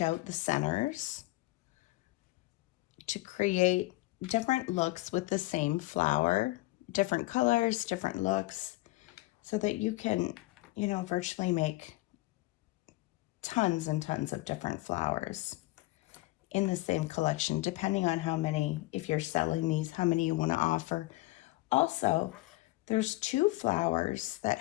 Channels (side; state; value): right; quieter; 19.7 dB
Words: out the centers to create different looks with the same flower, different colors, different looks, so that you can, you know, virtually make tons and tons of different flowers in the same collection, depending on how many, if you're selling these, how many you want to offer. Also, there's 2 flowers that